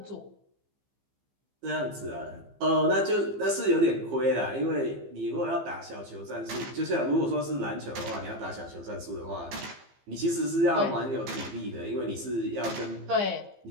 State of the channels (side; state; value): left; late; 15 ms